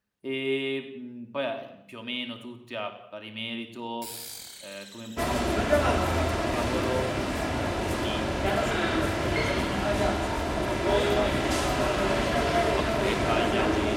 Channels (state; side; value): identical; both; correlation 1.00